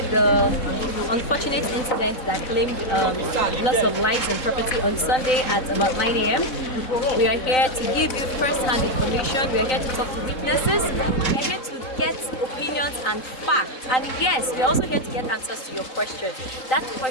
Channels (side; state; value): right; late; 3.9 ms